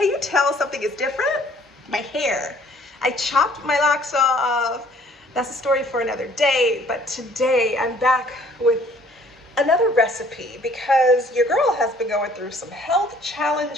you tell something is different? My hair. I chopped my locks off. That's a story for another day, but today I'm back with another recipe because your girl has been going through some health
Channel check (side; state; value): both; normal; correlation 0.57